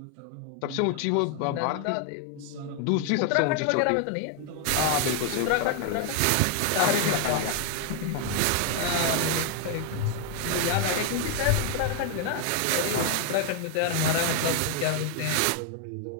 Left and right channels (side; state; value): both; different; correlation 0.01